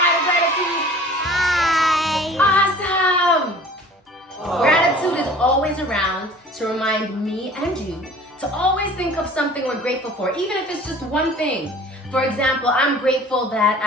to Gratitude? Hi. Awesome! Gratitude is always around to remind me and you to always think of something we're grateful for, even if it's just one thing. For example, I'm grateful that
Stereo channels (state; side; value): normal; both; correlation 0.47